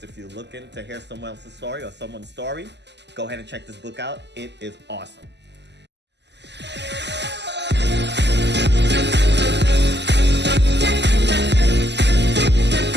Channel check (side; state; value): left; late; 0.50 ms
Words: if you're looking to hear someone else's story or someone's story, go ahead and check this book out. It is awesome.